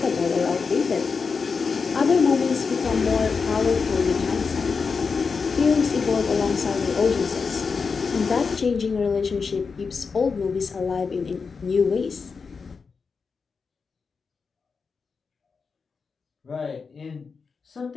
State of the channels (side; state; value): right; quieter; 5.1 dB